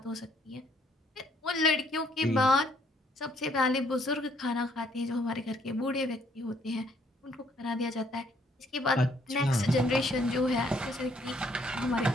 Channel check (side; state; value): both; normal; correlation 0.66